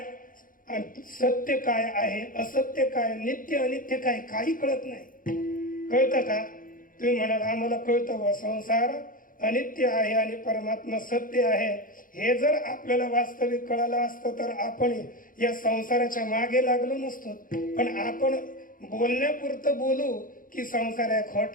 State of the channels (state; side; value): late; right; 0.40 ms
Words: सत्य काय आहे, असत्य काय, नित्य अनित्य काय, काही कळत नाही. कळतं का? तुम्ही म्हणाल आम्हाला कळतं व संसार अनित्य आहे आणि परमात्मा सत्य आहे. हे जर आपल्याला वास्तविक कळालं असतं तर आपण या संसाराच्या मागे लागलो नसतो. पण आपण बोलण्यापुरतं बोलू की संसार आहे,